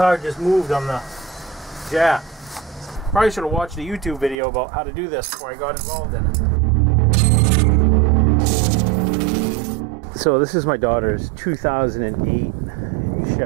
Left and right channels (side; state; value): left; drops out; at 4.4 s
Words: just moved on the jack. Probably should have watched a YouTube video about how to do this before I got involved in it. So this is my daughter's 2008